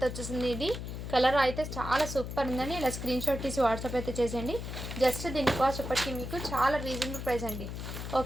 వచ్చేసింది. ఇది కలర్ అయితే చాలా సూపర్ ఉందండి. ఇలా స్క్రీన్ షాట్ తీసి వాట్సాప్ అయితే చేసేయండి. జస్ట్ దీని కాస్ట్ ఇప్పటికీ మీకు చాలా రీజనబుల్ ప్రైస్ అండి.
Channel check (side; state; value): left; noise; hum, 7 dB below the sound